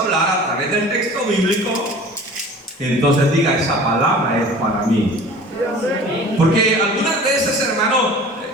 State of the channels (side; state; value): both; normal; correlation 0.43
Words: a través del texto bíblico, entonces diga, esa palabra es para mí. Porque algunas veces, hermano,